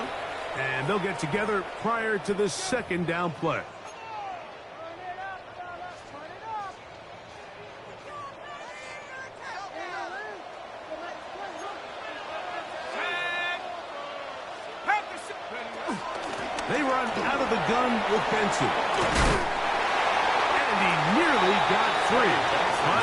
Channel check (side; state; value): both; identical; correlation 1.00